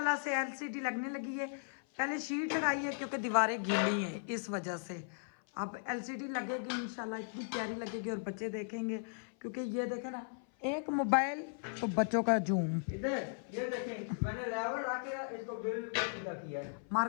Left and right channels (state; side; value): silent; right; 53 dB below the other